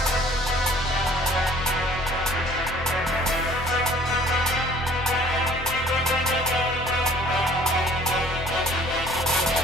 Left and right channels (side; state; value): both; normal; correlation 0.54